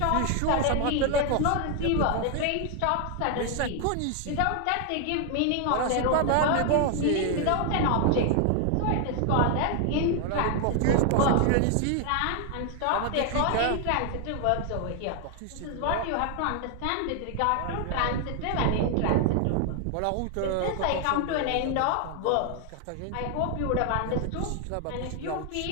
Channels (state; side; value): different; both; correlation 0.00